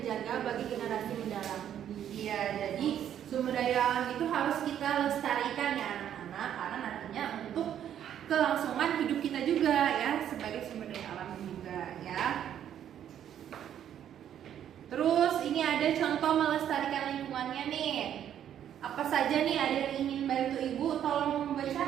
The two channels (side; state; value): left; quieter; 10.1 dB